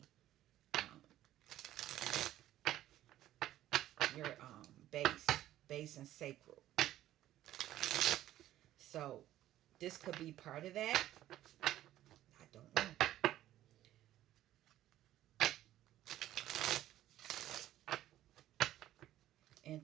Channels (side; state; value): left; quieter; 13.5 dB